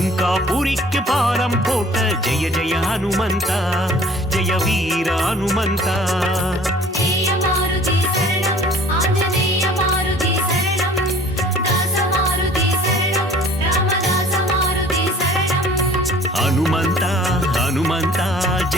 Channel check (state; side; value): normal; both; correlation 0.50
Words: பாலம் போட்ட ஜெய ஜெய ஹனுமந்தா ஜெய வீர ஹனுமந்தா ஜெய மாருதி சரணம் ஆஞ்சநேய மாருதி சரணம் தாச மாருதி சரணம் ராமதாச மாருதி சரணம் ஹனுமந்தா ஹனுமந்தா